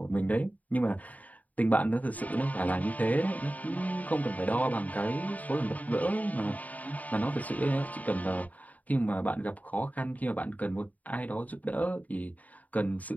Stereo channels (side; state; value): right; late; 0.073 ms